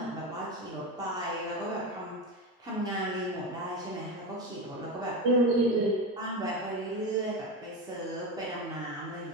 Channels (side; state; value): both; normal; correlation 0.18